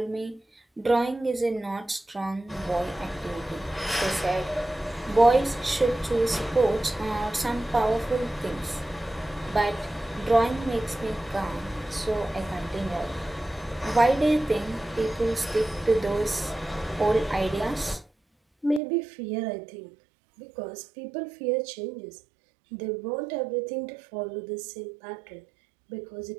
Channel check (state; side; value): drops out; left; at 18.8 s